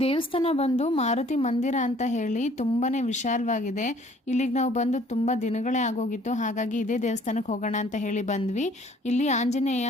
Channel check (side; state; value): both; normal; correlation 0.57